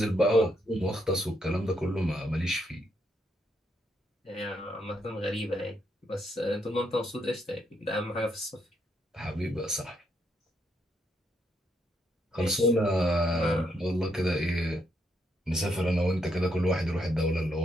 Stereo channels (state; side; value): normal; both; correlation 0.76